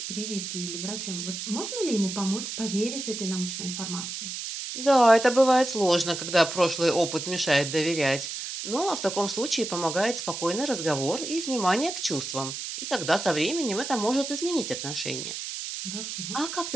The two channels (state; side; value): noise; right; hiss, 6 dB below the sound